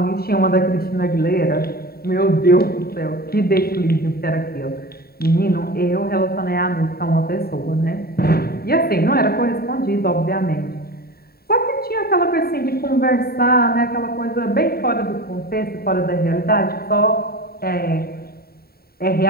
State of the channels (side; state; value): right; late; 0.45 ms